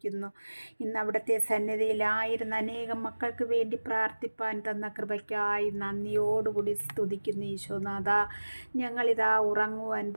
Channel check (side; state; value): both; inverted; correlation -1.00